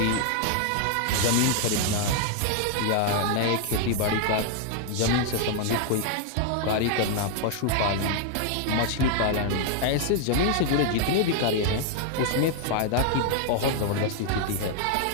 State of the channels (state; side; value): different; both; correlation 0.00